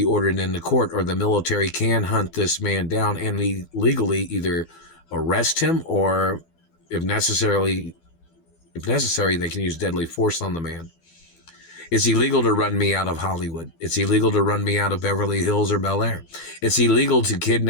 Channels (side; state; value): right; late; 12 ms